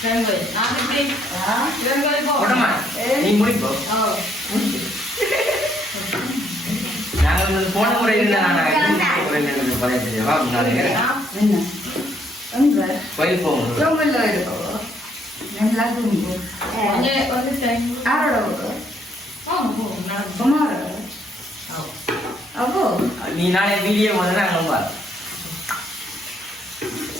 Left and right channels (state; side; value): normal; both; correlation 0.69